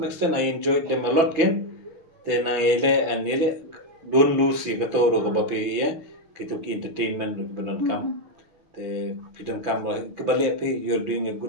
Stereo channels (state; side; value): late; left; 6.0 ms